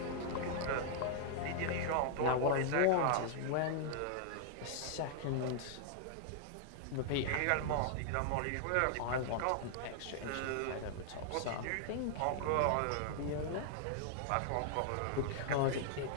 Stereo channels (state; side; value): different; both; correlation -0.01